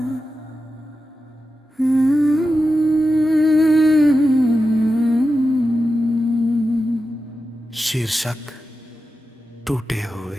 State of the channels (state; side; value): normal; both; correlation 0.91